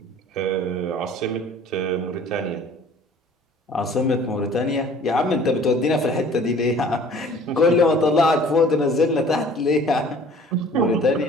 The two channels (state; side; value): normal; both; correlation 0.51